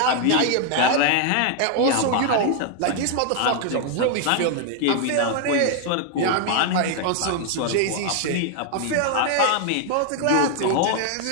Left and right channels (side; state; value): both; different; correlation 0.00